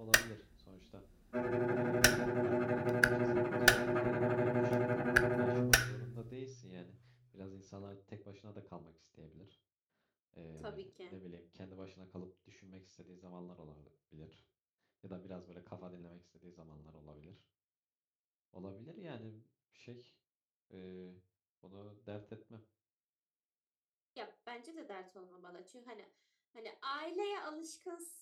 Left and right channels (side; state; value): both; identical; correlation 1.00